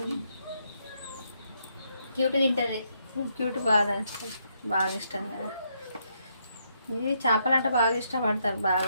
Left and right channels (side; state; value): both; inverted; correlation -0.76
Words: క్యూట్ తింటుంది. క్యూట్ బాగా ఇష్టం కదా. ఇది చేపలు అంటే బాగా ఇష్టపడతారు.